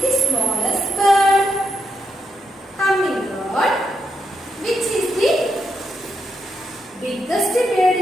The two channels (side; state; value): both; normal; correlation 0.81